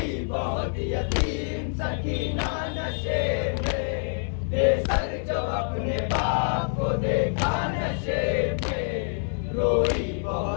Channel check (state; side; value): silent; right; digital silence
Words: بہت یتیم سکینہ نشیب میں بے سر جو اپنے باپ کو دیکھا نشیب میں روئی